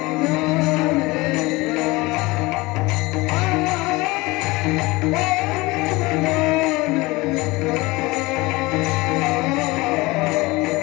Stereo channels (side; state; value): right; quieter; 22.4 dB